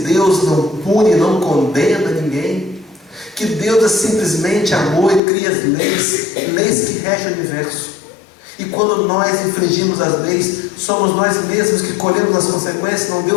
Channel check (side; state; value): right; drops out; at 5.2 s